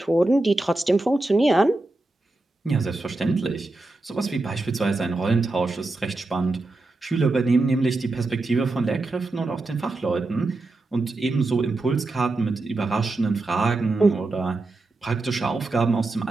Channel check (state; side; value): quieter; left; 3.1 dB